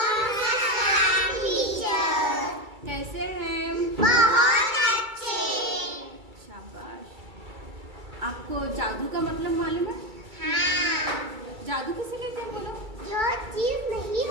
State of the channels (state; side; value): late; left; 2.3 ms